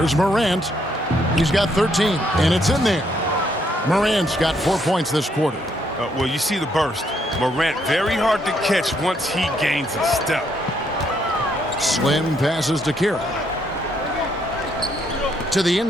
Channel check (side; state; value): both; normal; correlation 0.72